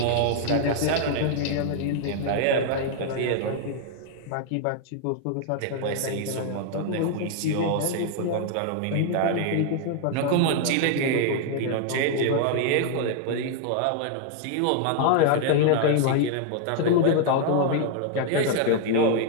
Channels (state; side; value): different; both; correlation 0.00